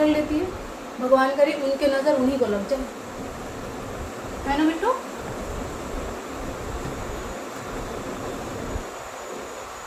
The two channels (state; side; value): identical; both; correlation 1.00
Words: लेती है। भगवान करे उनके नज़र उन्हीं को लग जाए, है ना बिट्टू।